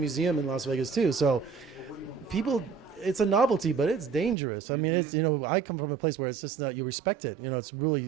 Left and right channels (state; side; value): drops out; left; at 4.4 s